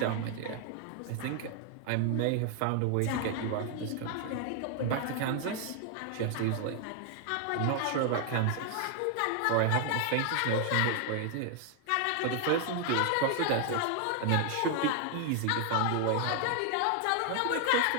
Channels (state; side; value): different; both; correlation 0.00